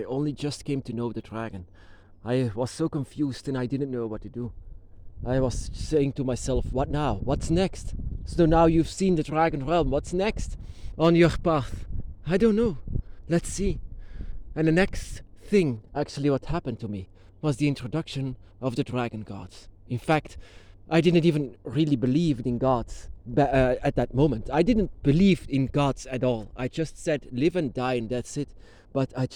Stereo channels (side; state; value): both; identical; correlation 1.00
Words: only just came to know the dragon. I was so confused and I didn't know what to do. I was saying to myself, what now? What's next? So now you've seen the dragon realm, what's next on your path? I don't know. Let's see. And the next thing, actually what happened to me, was the introduction of the dragon gods. In fact, I didn't even really believe in gods at that moment. I didn't believe in gods at all. I just said live and die and that's it. But I